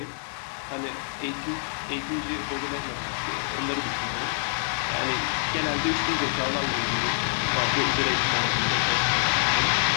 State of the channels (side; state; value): right; silent; digital silence